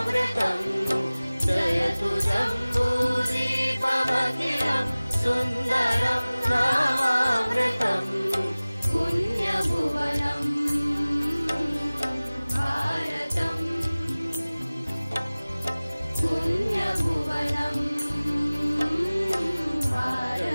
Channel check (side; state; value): both; inverted; correlation -0.99